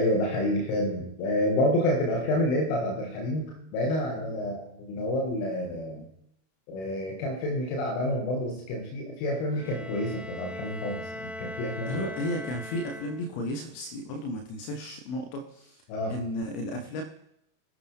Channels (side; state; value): right; late; 32 ms